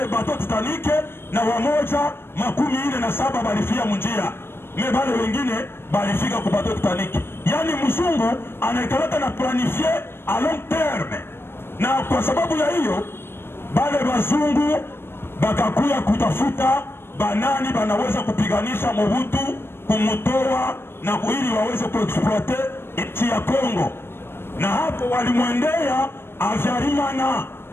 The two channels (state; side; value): late; right; 0.11 ms